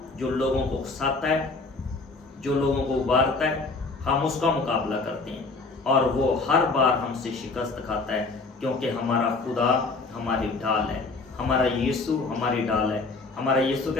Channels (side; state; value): right; quieter; 3.8 dB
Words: جو لوگوں کو اکساتا ہے، جو لوگوں کو ابھارتا ہے، ہم اس کا مقابلہ کرتے ہیں، اور وہ ہر بار ہم سے شکست کھاتا ہے، کیونکہ ہمارا خدا ہماری ڈال ہے، ہمارا یسوع ہماری ڈال ہے۔ ہمارا یسوع